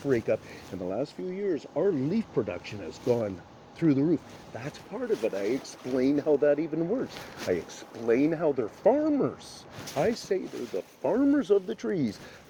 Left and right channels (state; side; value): identical; both; correlation 1.00